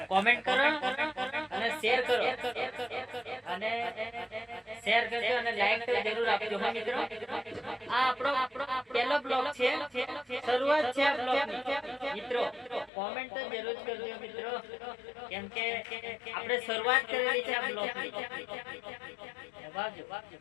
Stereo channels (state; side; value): drops out; right; at 12.9 s